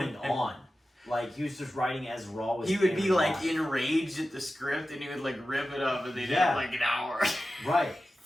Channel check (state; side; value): normal; both; correlation 0.94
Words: on? Like he was just writing as Raw was. He would be airing like live. enraged at the script, and he would like rip it up, and they'd Yeah. have like an hour. Right.